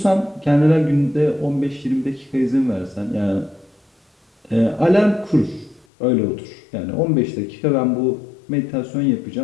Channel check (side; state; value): right; drops out; at 5.9 s